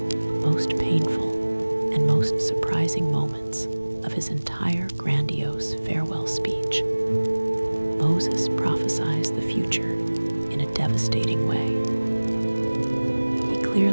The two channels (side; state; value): both; inverted; correlation -1.00